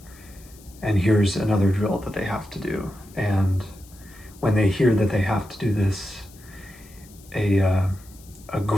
and here's another drill that they have to do. And when they hear that they have to do this, a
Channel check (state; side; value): noise; left; hiss, 24 dB below the sound